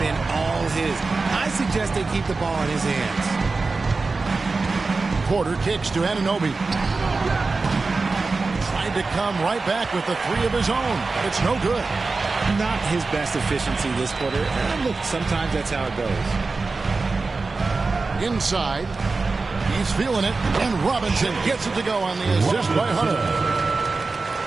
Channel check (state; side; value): quieter; left; 3.9 dB